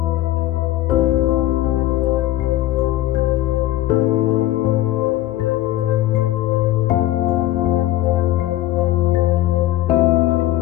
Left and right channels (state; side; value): quieter; right; 15.0 dB